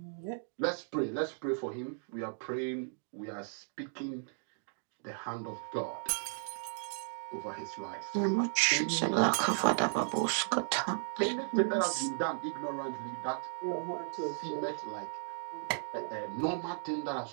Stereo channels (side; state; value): left; silent; digital silence